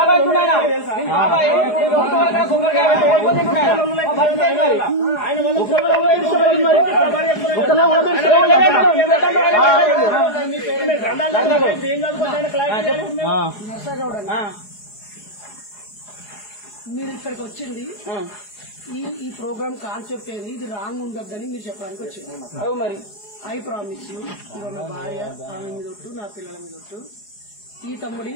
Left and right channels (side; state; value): right; late; 4.8 ms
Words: కొబ్బరికాయ పెట్టి ఓడిపోయి తింటున్నాయన. మీరు ఇక్కడికి వచ్చింది ఈ ప్రోగ్రామ్ కాన్సెప్ట్ ఏంది, ఇది రాంగ్ ఉండొద్దని మీరు చెప్పడానికి వచ్చింది. మరి ఐ ప్రామిస్ యూ, నా భార్య ఆమె మీద ఒట్టు, నా పిల్లల మీద ఒట్టు, ఈ తమ్ముడి